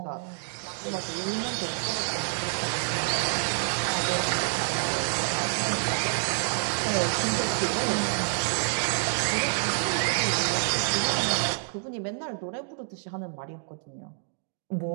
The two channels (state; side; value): silent; left; digital silence